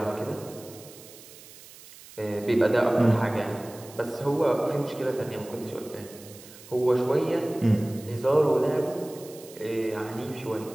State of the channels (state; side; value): noise; right; hiss, 19 dB below the sound